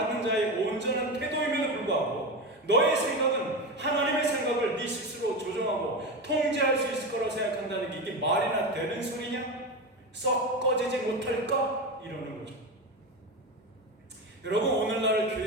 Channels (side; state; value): both; normal; correlation 0.20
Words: 자의 온전한 태도임에도 불구하고 너의 생각은 하나님의 생각을 네 스스로 조정하고 통제할 수 있을 거라고 생각한다는 게 이게 말이나 되는 소리냐? 썩 꺼지지 못할까? 이러는 거죠. 여러분, 오늘날